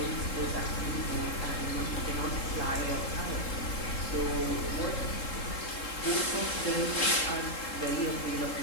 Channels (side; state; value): right; late; 3.7 ms